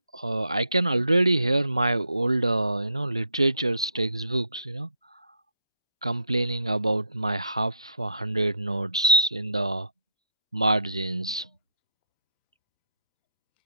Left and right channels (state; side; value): inverted; both; correlation -0.71